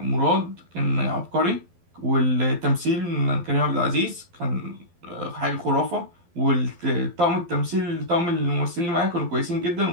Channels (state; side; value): late; left; 12 ms